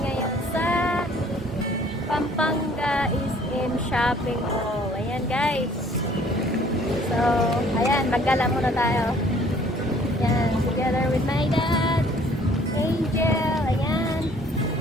ngayon sa Pampanga SM Shopping Mall. Ayan guys. So, ayan, maggala muna tayo. Ayan, together with my dad, Angel, ayan.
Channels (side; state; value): both; normal; correlation 0.57